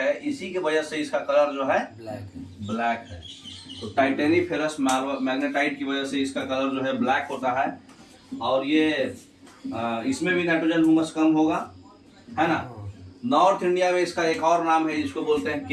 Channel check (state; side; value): identical; both; correlation 1.00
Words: इसी की वजह से इसका कलर जो है ब्लैक है। तो टाइटेनीफेरस मैग्नेटाइट की वजह से इसका कलर जो है ब्लैक होता है। और ये इसमें भी नाइट्रोजन ह्यूमस कम होगा, है ना। नॉर्थ इंडिया में इसका एक और नाम है, जिसको बोलते हैं